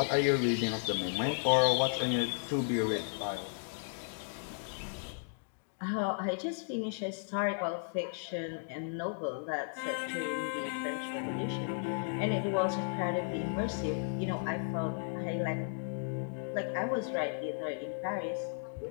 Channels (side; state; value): right; silent; digital silence